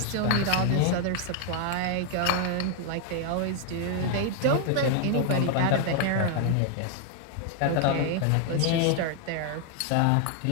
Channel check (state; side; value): different; both; correlation 0.00